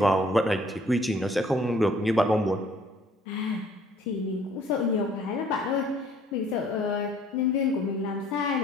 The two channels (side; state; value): both; normal; correlation 0.58